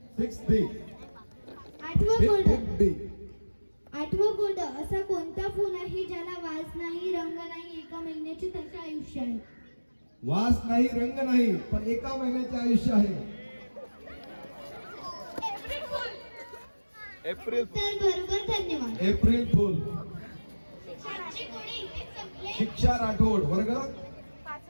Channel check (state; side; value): inverted; both; correlation -1.00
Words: 6B, आठवं कोड. 5B. आठवं कोड. असा कोणता फूल आहे ज्याला वास नाही, रंग नाही, एका महिन्याचे त्याचे आयुष्य आहे? वास नाही, रंग नाही, पण एका महिन्याचे आयुष्य आहे. एप्रिल. उत्तर बरोबर, धन्यवाद. April fool. शिक्षा राठोड, वर्ग